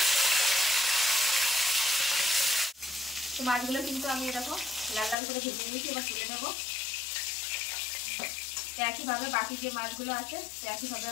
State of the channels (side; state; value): right; drops out; at 5.2 s